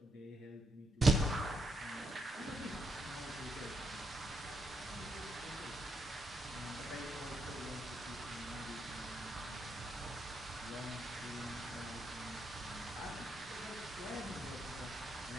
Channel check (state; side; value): normal; both; correlation 0.79